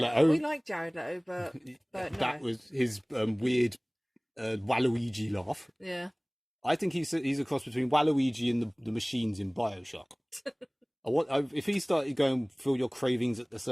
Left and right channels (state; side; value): identical; both; correlation 1.00